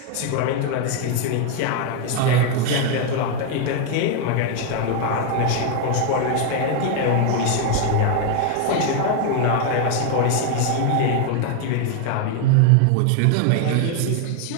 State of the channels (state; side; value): different; both; correlation 0.01